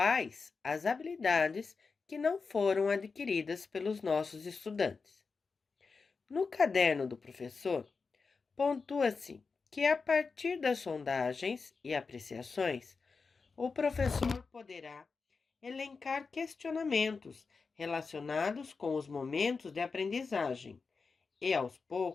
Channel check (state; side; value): quieter; right; 4.7 dB